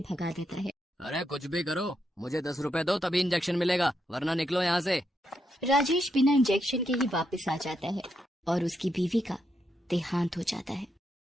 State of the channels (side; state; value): both; normal; correlation 0.81